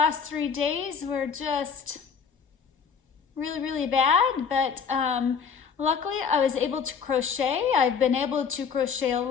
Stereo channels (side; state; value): right; quieter; 6.3 dB